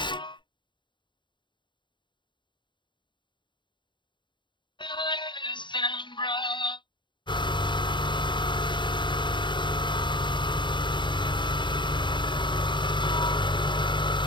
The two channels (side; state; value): right; late; 0.23 ms